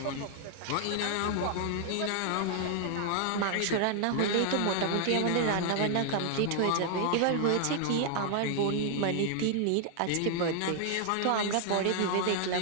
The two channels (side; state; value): both; different; correlation 0.00